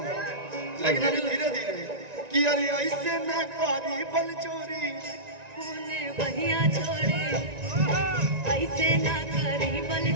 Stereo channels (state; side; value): late; left; 1.9 ms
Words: लेकिन अभी धीरे धीरे कि अरे ऐसे ना करी बल चोरी होने भैया छोरे, ऐसे ना करी बल